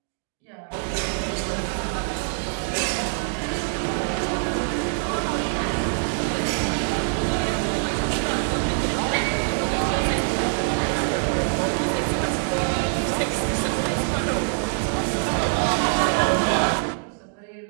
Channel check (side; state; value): left; silent; digital silence